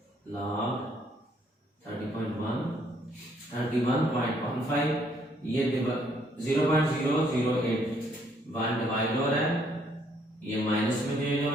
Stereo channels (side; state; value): both; normal; correlation 0.68